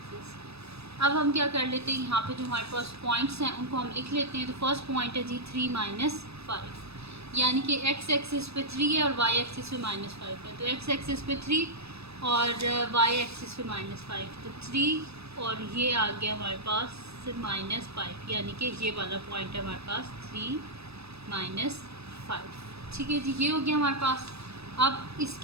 अब हम क्या कर लेते हैं, यहाँ पे जो हमारे पास पॉइंट्स हैं उनको हम लिख लेते हैं। तो फर्स्ट पॉइंट है जी 3 -5, यानी कि एक्स एक्सिस पे 3 है और वाई एक्सिस पे -5 है। तो एक्स एक्सिस पे 3 और वाई एक्सिस पे -5। तो 3 और ये आ गया हमारे पास -5, यानी कि ये वाला पॉइंट है हमारे पास 3 -5, ठीक है जी। ये हो गया हमारे पास। अब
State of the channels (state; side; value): late; left; 0.79 ms